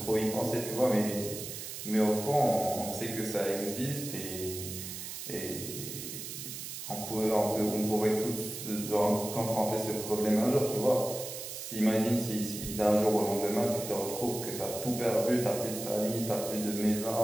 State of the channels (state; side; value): noise; right; hiss, 8 dB below the sound